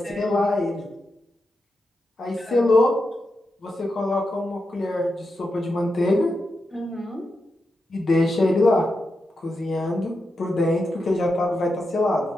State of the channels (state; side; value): normal; both; correlation 0.88